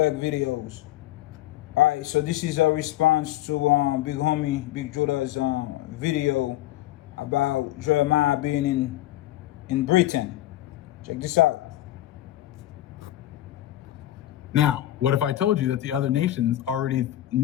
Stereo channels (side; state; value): right; quieter; 14.5 dB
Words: videos. All right, so this is a response to Big Homie, Big Judah's video about Jeremiah being in Britain. Check this out. Now, what if I told you that the other nations already